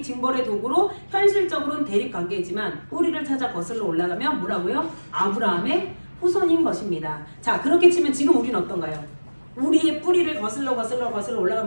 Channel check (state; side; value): inverted; both; correlation -1.00